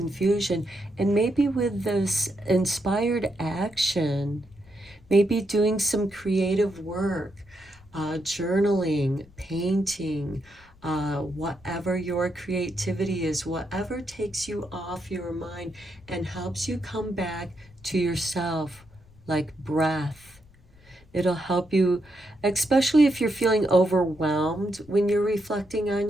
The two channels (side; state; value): left; noise; rumble, 26 dB below the sound